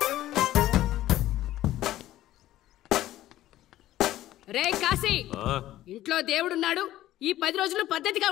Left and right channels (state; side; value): quieter; right; 14.3 dB